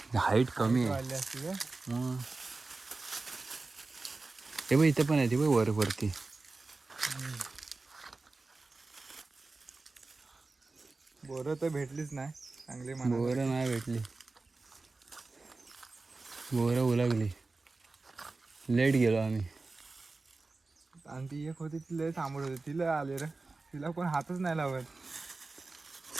हाईट कमी आहे. वाढली असती का? मग हे बघ इथे पण आहे, ते बघ वर वरती. बोरं तर भेटलीच नाही चांगली म्हणा. बोरं नाही भेटली, बोरं उलगली. लेट गेलो आम्ही. आणि ती एक होती ती लय थांबत होती, तिला आले रे, तिला कोण हातच नाही लावत.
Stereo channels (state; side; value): quieter; left; 3.6 dB